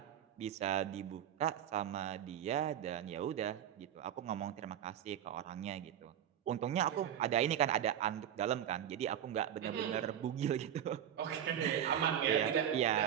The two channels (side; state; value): left; quieter; 10.1 dB